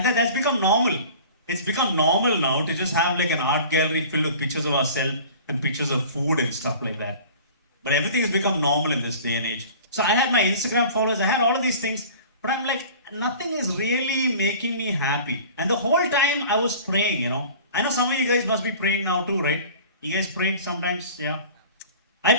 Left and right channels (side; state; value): both; inverted; correlation -0.43